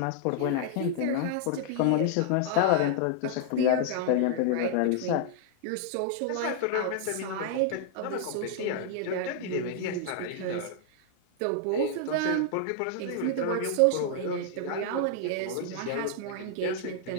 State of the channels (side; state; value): both; different; correlation -0.01